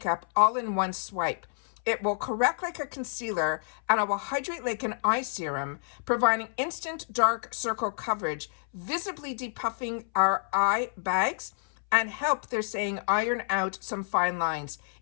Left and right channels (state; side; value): silent; right; 59 dB below the other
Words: all in one swipe. It will correct like a concealer, and it will hydrate like an eye serum, providing instant dark circle coverage, visibly depuffing our eye bags, and help, they're saying, iron out some fine lines.